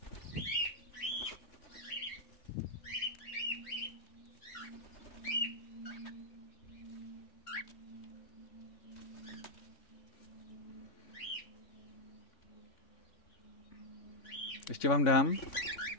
Ještě vám dám.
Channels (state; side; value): late; right; 3.5 ms